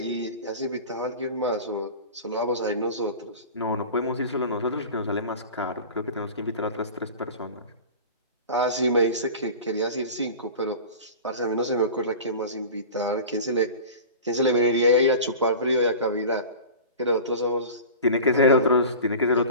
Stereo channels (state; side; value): inverted; both; correlation -0.36